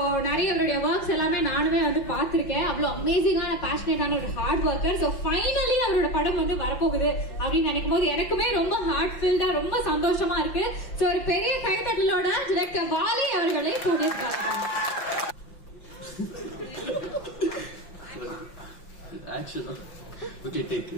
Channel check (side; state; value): right; late; 5.7 ms